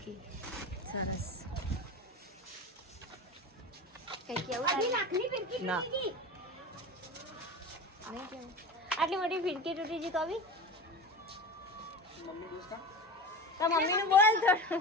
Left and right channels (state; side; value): normal; both; correlation 0.29